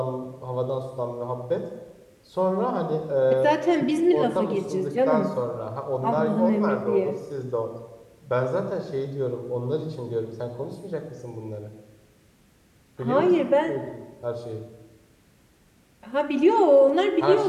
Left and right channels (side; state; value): both; identical; correlation 1.00